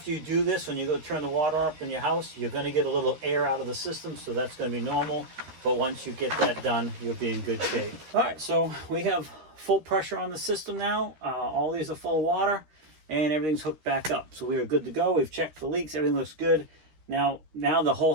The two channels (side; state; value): left; late; 13 ms